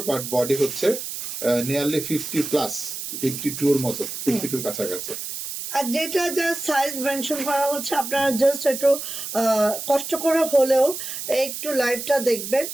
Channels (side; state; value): right; noise; hiss, 7 dB below the sound